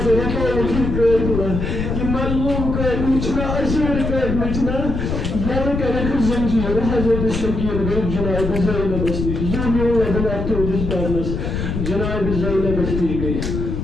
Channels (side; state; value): left; noise; rumble, 3 dB below the sound